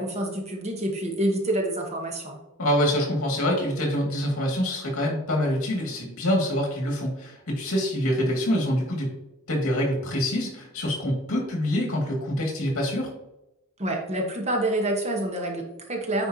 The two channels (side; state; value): both; normal; correlation 0.50